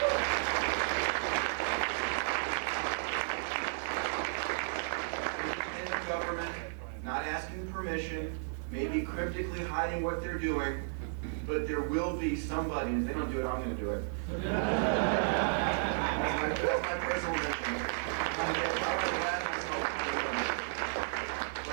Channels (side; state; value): left; silent; digital silence